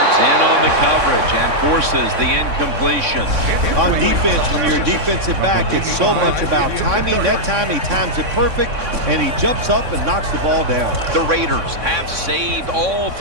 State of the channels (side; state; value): left; late; 3.6 ms